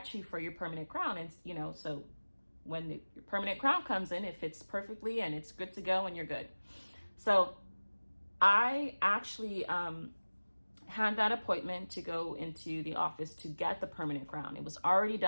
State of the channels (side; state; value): both; inverted; correlation -1.00